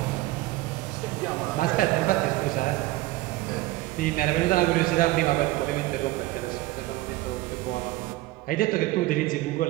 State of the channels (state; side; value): quieter; left; 18.2 dB